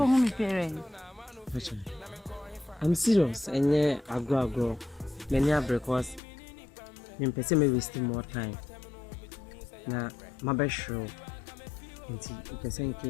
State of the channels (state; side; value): drops out; right; at 6.2 s